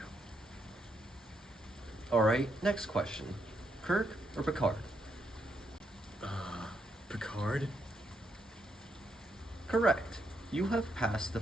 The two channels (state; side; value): normal; both; correlation 0.78